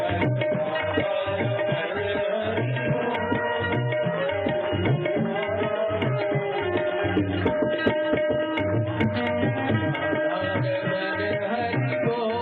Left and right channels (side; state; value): both; identical; correlation 1.00